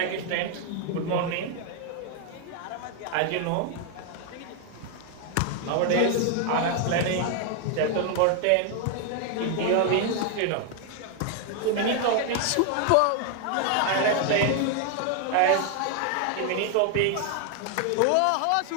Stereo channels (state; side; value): different; both; correlation 0.00